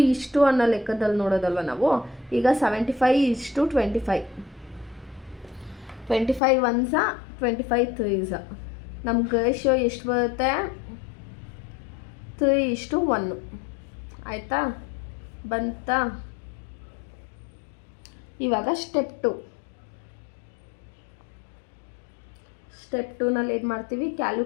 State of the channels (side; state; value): right; drops out; at 6.4 s